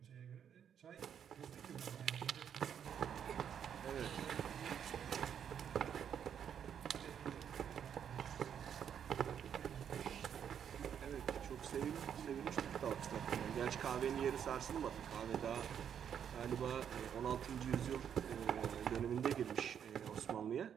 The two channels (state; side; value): quieter; left; 8.5 dB